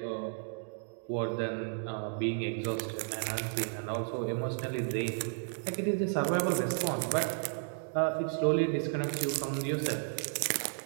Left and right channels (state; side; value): silent; left; 56 dB below the other